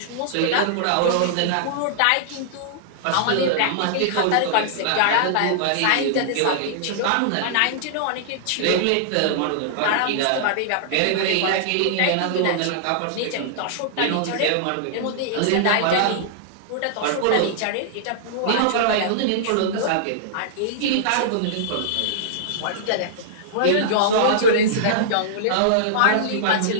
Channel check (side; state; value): both; different; correlation -0.02